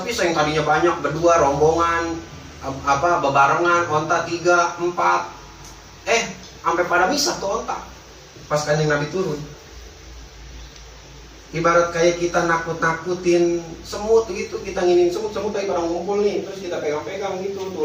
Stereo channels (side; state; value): both; identical; correlation 1.00